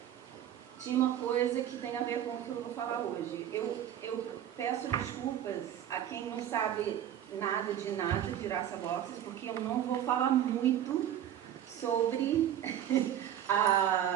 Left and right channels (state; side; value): quieter; left; 10.7 dB